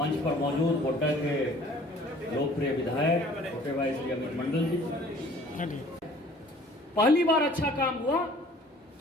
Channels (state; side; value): normal; both; correlation 0.52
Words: पर मौजूद गोड्डा के लोकप्रिय विधायक छोटे भाई श्री अमित मंडल जी। पहली बार अच्छा काम हुआ